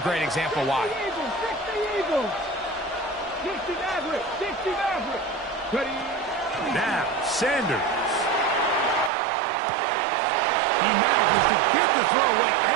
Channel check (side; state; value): left; drops out; at 9.1 s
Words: example why. 60 Maverick. Now, Sanders. He manages to get the throwaway